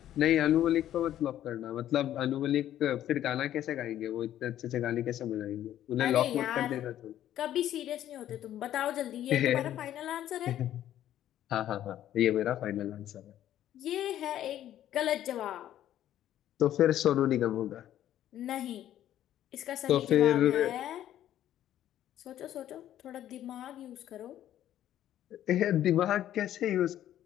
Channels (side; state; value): right; quieter; 11.9 dB